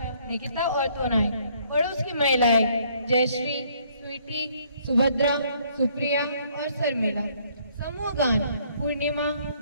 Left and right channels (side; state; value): both; inverted; correlation -0.64